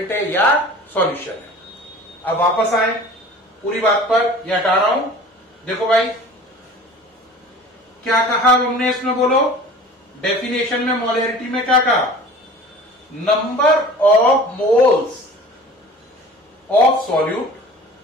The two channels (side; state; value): both; normal; correlation 0.43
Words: है या सॉल्यूशन है। अब वापस आए पूरी बात पर, यह हटा रहा हूं। देखो भाई क्या कहा हमने इसमें, बोलो डेफिनेशन में मोलैरिटी में क्या कहा, number of moles of solute,